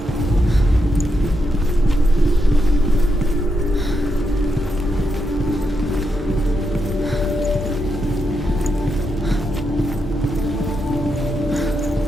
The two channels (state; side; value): normal; both; correlation 0.83